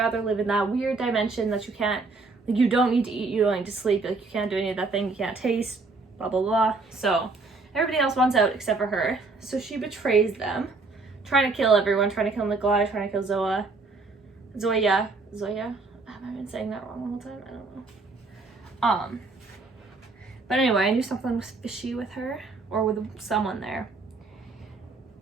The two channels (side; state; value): left; quieter; 3.8 dB